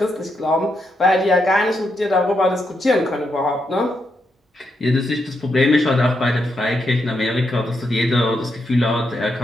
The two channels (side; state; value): both; normal; correlation 0.81